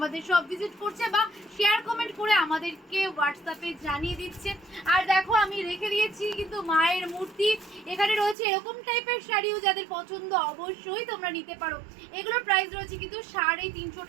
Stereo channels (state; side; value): drops out; left; at 8.3 s